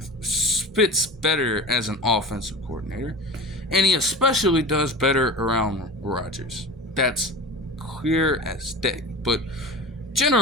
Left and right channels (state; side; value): normal; both; correlation 0.32